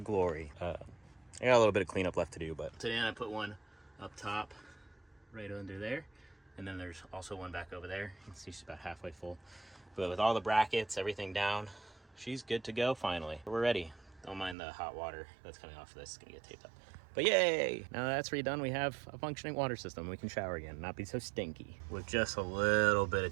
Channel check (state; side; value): drops out; left; at 14.6 s